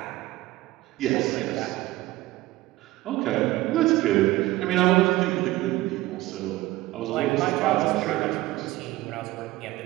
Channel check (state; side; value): quieter; left; 17.7 dB